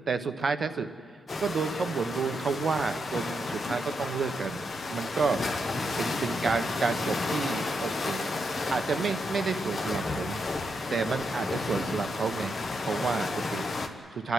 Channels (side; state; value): both; normal; correlation 0.83